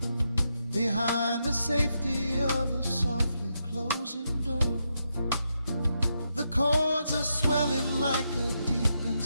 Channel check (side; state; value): both; inverted; correlation -0.83